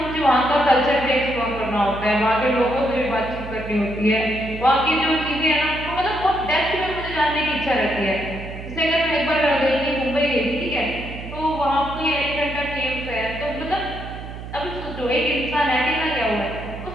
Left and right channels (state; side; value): noise; right; hum, 11 dB below the sound